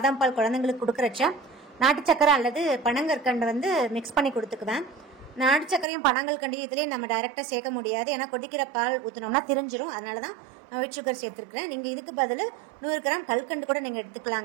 பால் குழந்தைங்களுக்கு கொடுக்குறச்ச நாட்டு சக்கரை அல்லது பனங்கற்கண்டு மிக்ஸ் பண்ணி கொடுத்துக்குவேன். நாட்டு சக்கரையும் பனங்கற்கண்டையும் இதுலேயே நம்ம டைரெக்டாக சேர்க்க முடியாது. ஏன்னா கொதிக்கிற பால் ஊற்றினோம்னா திரிஞ்சிரும். அதனால தான் ஒயிட் சுகர் சேர்த்துருக்கிறேன். நீங்கள் இதுக்கு பதில் 100 கிராம் கல்கண்டு கூட நீங்கள்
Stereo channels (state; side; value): drops out; left; at 5.9 s